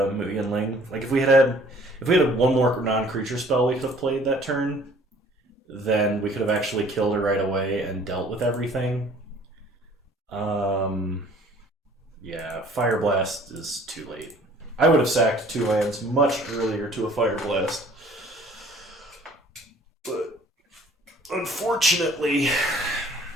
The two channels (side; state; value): both; normal; correlation 0.54